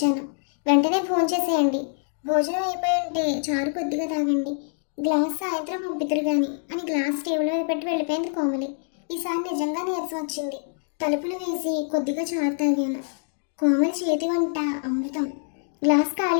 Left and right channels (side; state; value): right; silent; digital silence